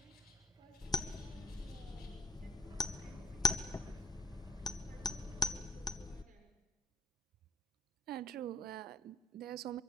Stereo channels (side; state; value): both; normal; correlation 0.63